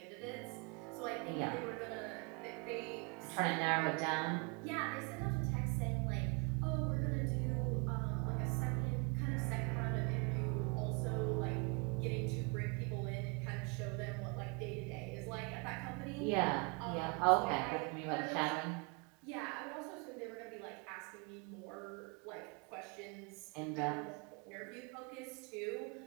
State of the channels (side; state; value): left; quieter; 31.8 dB